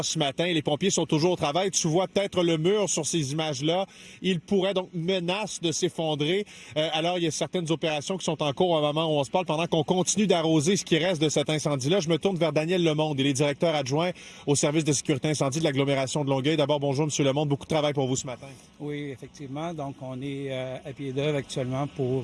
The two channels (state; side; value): identical; both; correlation 1.00